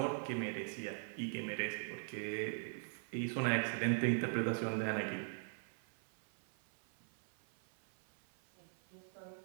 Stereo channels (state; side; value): silent; left; 50 dB below the other